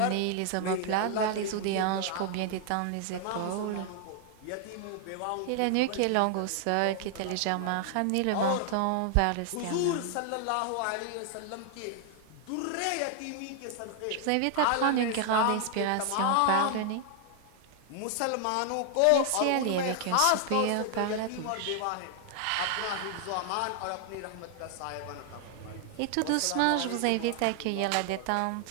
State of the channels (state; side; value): different; both; correlation 0.00